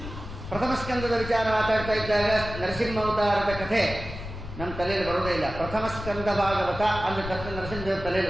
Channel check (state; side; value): noise; left; rumble, 10 dB below the sound